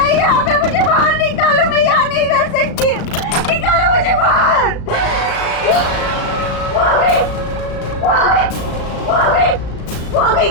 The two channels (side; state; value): right; late; 36 ms